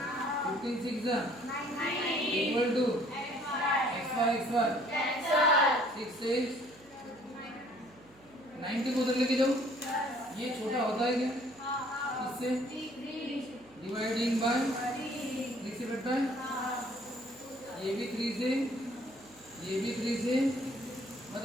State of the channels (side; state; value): right; noise; hum, 28 dB below the sound